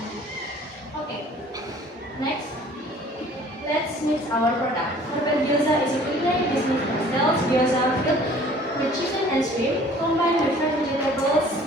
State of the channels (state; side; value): normal; both; correlation 0.51